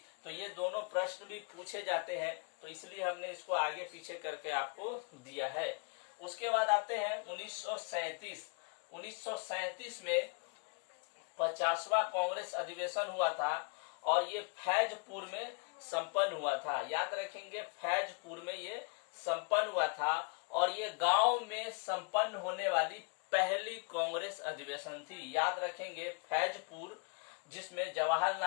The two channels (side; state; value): right; quieter; 36.4 dB